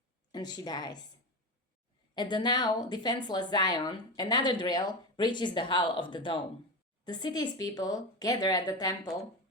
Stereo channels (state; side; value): normal; both; correlation 0.20